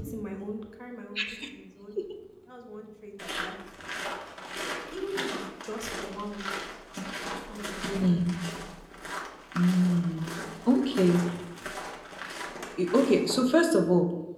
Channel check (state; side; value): identical; both; correlation 1.00